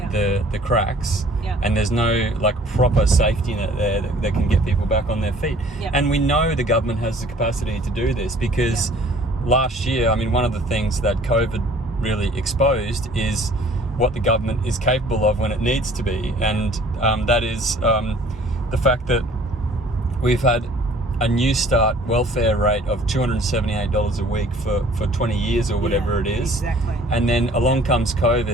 cracks and there's no like proper safety net there that can get people back on their feet? And we know the government has the capacity to do this because last year, I mean, one of the things that COVID really exposed is what the government is capable of when it needs to be, and that is the fact that we've had a New Start welfare rate of $278 a week for 20 years or whatever it is. Exactly. And then along comes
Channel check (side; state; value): both; normal; correlation 0.53